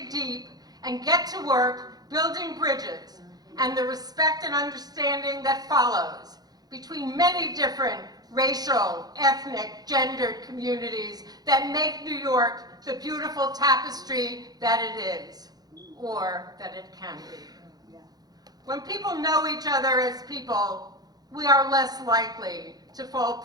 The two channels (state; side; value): late; left; 0.19 ms